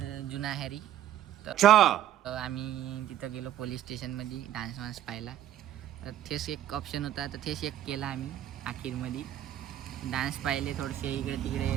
जुना हॅरी. तर आम्ही तिथं गेलो पोलीस स्टेशनमध्ये डान्स वान्स पाहायला. तर तेच एक ऑप्शन होता तर तेच एक केला आम्ही अखेरमध्ये. डान्स पाहिले थोडेसे इकडे तिकडे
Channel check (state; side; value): quieter; left; 12.2 dB